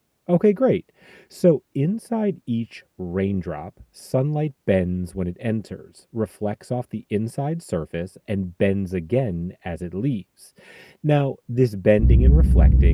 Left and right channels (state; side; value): identical; both; correlation 1.00